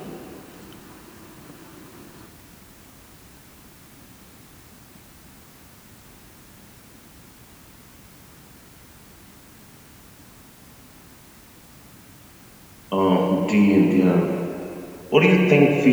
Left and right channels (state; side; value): identical; both; correlation 1.00